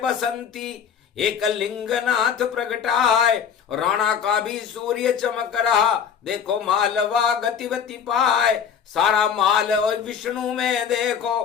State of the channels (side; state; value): right; quieter; 7.6 dB